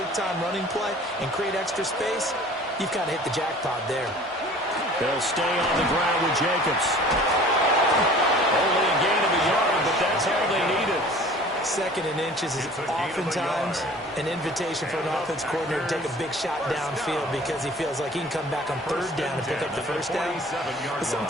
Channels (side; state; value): both; normal; correlation 0.47